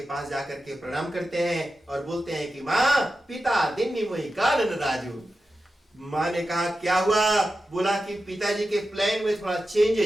पास जाकर के प्रणाम करते हैं और बोलते हैं कि माँ पिता दिन्नी मोहि कानन राजू। माँ ने कहा क्या हुआ, बोला कि पिताजी के प्लान में थोड़ा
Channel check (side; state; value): both; normal; correlation 0.92